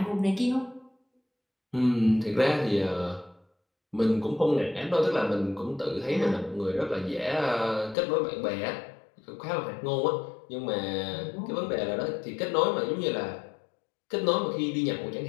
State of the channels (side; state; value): right; drops out; at 8.0 s